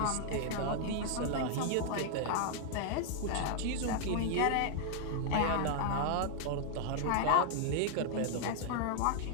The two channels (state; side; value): different; both; correlation 0.00